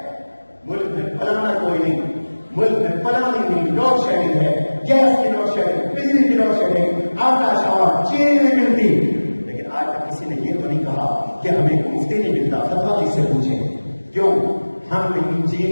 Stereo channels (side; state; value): both; inverted; correlation -1.00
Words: ملک میں فلانا کوئی نہیں، ملک میں فلانی نہیں، لوڈ شیڈنگ ہے، گیس کی لوڈ شیڈنگ، بجلی کی لوڈ شیڈنگ، آٹا شاور چینی نہیں ملتی۔ لیکن آج تک کسی نے یہ تو نہیں کہا کہ ہمیں مفتی نہیں ملتا۔ فتویٰ کس سے پوچھیں؟ کیوں؟ ہم نے